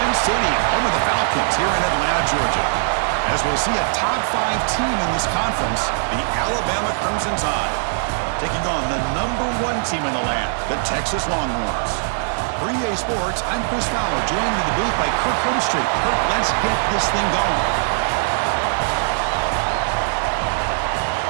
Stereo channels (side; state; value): left; silent; digital silence